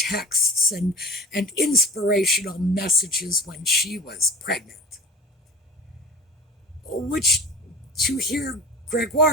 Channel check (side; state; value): both; normal; correlation 0.37